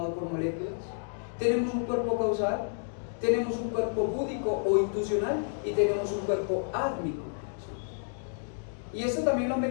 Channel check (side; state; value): right; silent; digital silence